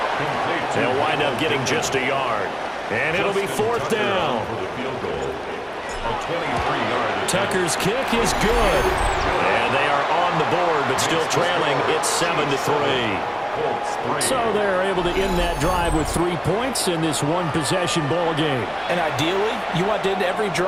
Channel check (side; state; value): both; identical; correlation 1.00